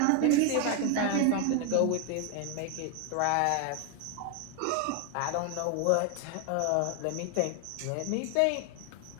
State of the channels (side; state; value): both; different; correlation 0.01